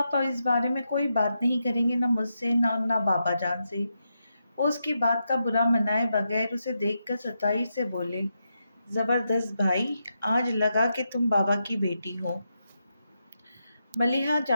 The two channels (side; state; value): both; inverted; correlation -0.85